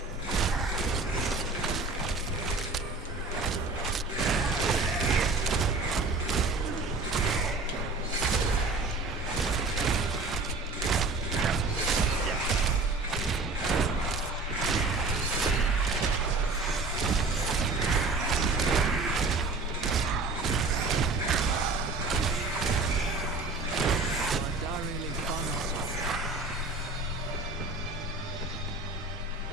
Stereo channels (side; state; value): left; quieter; 3.5 dB